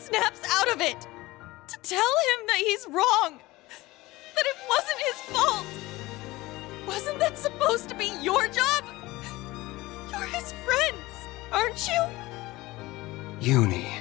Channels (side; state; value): right; quieter; 19.7 dB